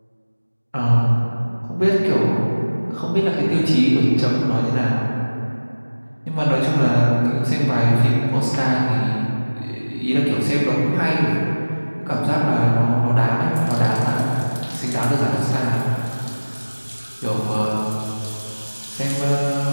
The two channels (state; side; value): inverted; both; correlation -1.00